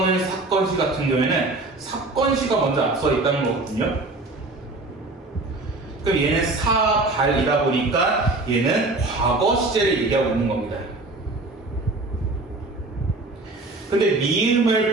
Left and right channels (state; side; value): quieter; left; 3.1 dB